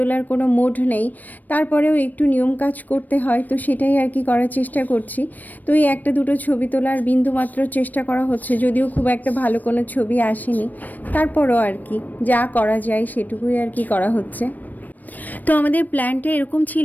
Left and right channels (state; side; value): late; right; 0.084 ms